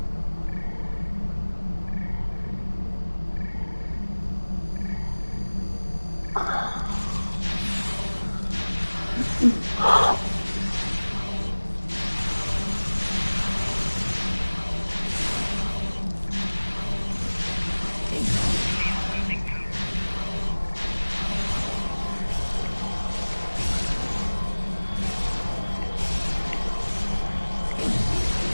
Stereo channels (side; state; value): both; inverted; correlation -1.00